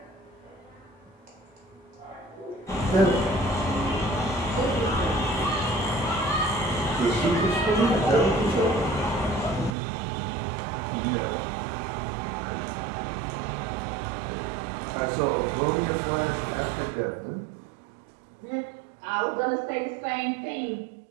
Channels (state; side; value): drops out; left; at 9.8 s